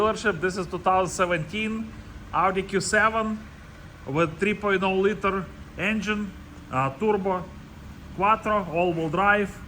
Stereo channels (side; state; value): both; identical; correlation 1.00